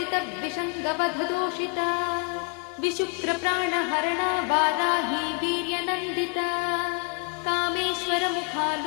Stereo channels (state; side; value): quieter; right; 35.6 dB